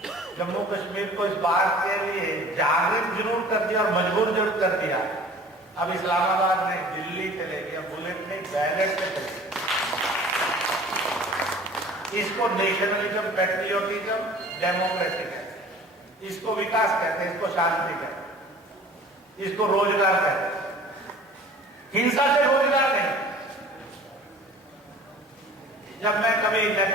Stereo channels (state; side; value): normal; both; correlation 0.46